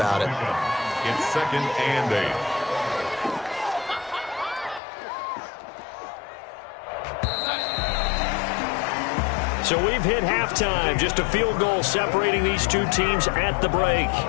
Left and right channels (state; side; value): drops out; right; at 4.8 s